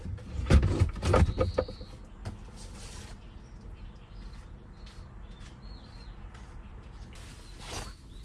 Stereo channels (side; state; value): both; identical; correlation 1.00